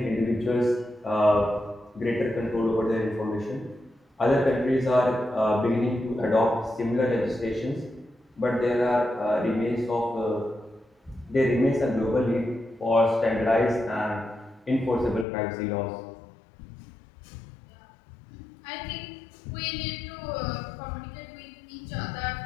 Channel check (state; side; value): drops out; right; at 15.2 s